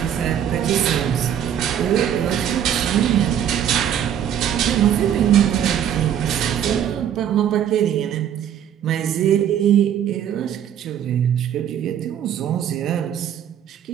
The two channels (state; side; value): quieter; left; 9.6 dB